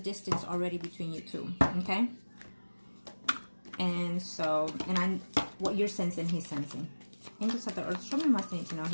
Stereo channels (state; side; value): inverted; both; correlation -1.00